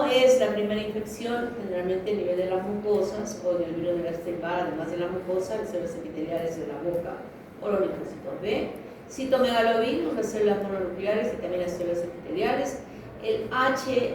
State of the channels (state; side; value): identical; both; correlation 1.00